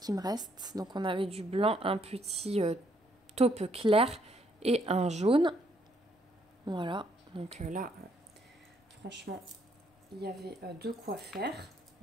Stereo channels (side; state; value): both; normal; correlation 0.71